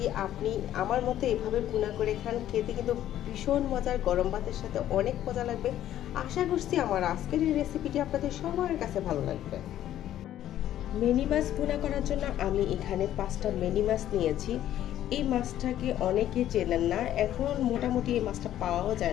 আপনি আমার মতো এভাবে বোনা করে খান, খেতে কিন্তু ভীষণ মজার, গরম ভাতের সাথে অনেক মজা লাগবে। আশা করছি আমার আজকের এই রেসিপিটি আপনাদের সবার কাছে ভালো লাগবে। মিনি মাছ বোনা করার জন্য আমি এখানে 5টা মিনি মাছ নিয়েছি। এই মাছটাকে অনেকে চেনেন না, এখন মোটামুটি এই মাছটা পাওয়াও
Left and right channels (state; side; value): quieter; right; 12.1 dB